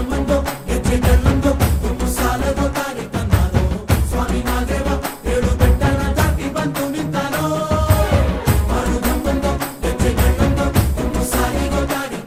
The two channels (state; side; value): identical; both; correlation 1.00